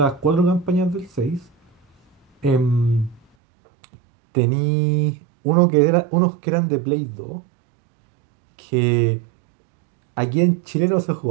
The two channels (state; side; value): drops out; left; at 3.2 s